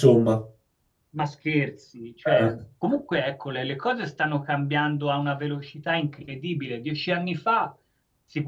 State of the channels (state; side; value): identical; both; correlation 1.00